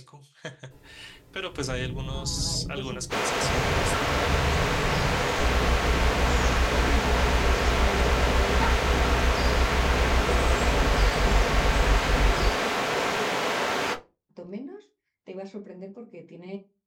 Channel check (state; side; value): identical; both; correlation 1.00